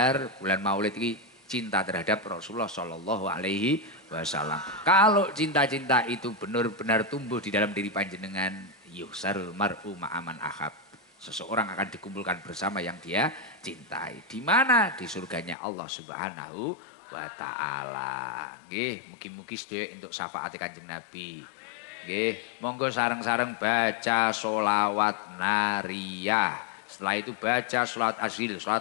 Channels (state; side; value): drops out; right; at 15.6 s